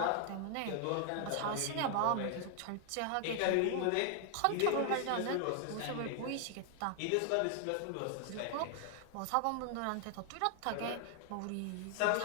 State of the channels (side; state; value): both; different; correlation 0.00